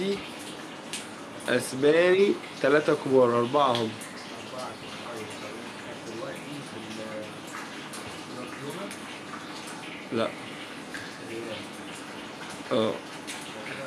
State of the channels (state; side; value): identical; both; correlation 1.00